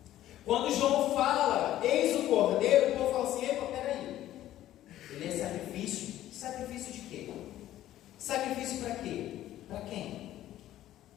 Quando João fala, eis o cordeiro, o povo fala assim, epa, peraí. Ele é sacrifício? Sacrifício de quê? Sacrifício para quê? Para quem?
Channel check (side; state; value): right; quieter; 13.4 dB